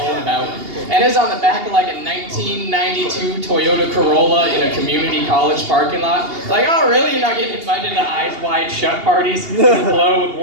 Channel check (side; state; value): left; late; 2.8 ms